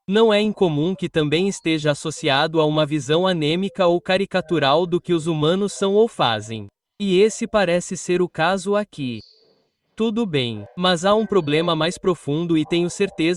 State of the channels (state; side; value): identical; both; correlation 1.00